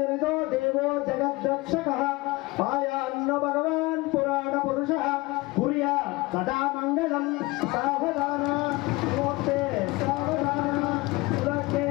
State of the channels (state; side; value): quieter; right; 22.3 dB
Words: నిదో దేవో జగద్రక్షకః పాయాన్న భగవాన్ పురాణ పురుషః పుర్యా సదా మంగళం సావధాన సుమూర్తే సావధాన సురతే